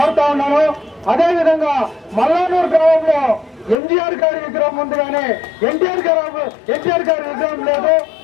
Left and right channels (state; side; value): drops out; right; at 3.8 s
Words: ఉన్నాను. అదేవిధంగా మల్లానూరు గ్రామంలో ఎంజీఆర్ గారి విగ్రహం ఉంది కానీ ఎన్టీఆర్ గారి విగ్రహం లేదు,